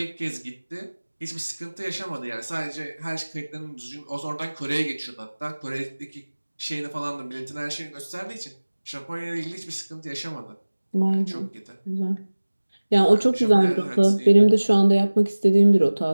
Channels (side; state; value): both; inverted; correlation -1.00